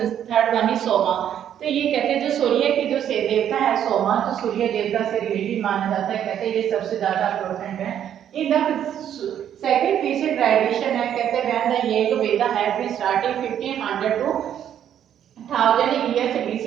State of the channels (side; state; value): left; quieter; 9.9 dB